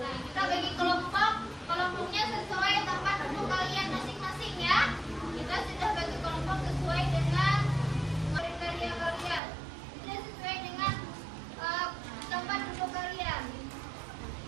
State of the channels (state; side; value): drops out; left; at 9.4 s